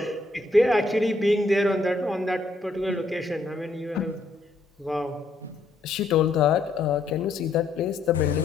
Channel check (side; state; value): right; quieter; 3.1 dB